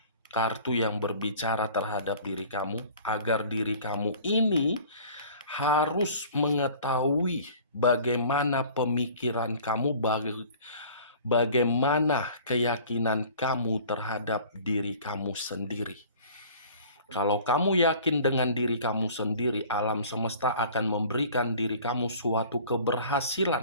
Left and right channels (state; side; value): inverted; both; correlation -0.47